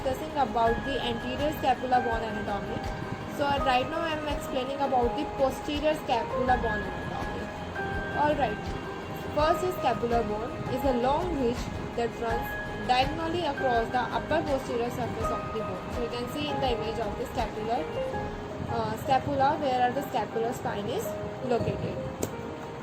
about the anterior scapula bone anatomy. So right now I am explaining about the posterior scapula bone anatomy. Alright, first is scapular bone is a long ridge that runs diagonally across the upper posterior surface of the bone. So you can see in the image of the scapula where the scapular spine is located.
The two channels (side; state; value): both; identical; correlation 1.00